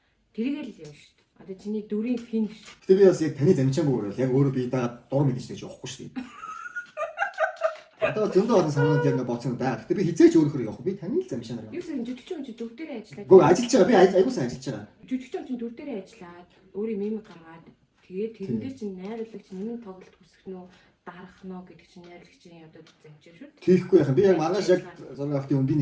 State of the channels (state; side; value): identical; both; correlation 1.00